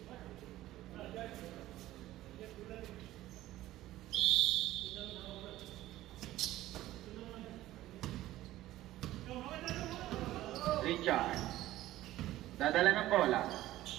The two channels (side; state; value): left; quieter; 15.2 dB